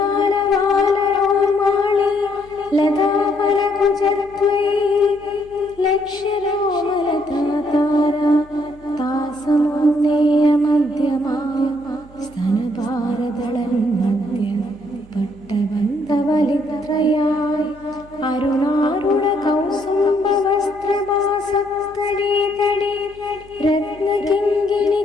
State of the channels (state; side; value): noise; right; hum, 23 dB below the sound